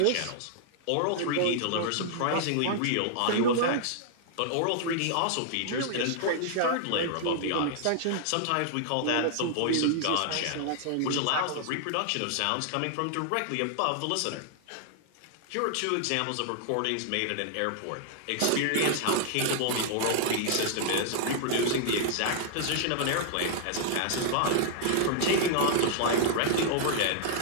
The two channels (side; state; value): both; different; correlation -0.01